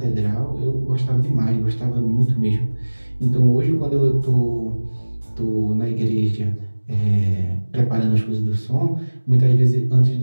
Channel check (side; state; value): both; inverted; correlation -1.00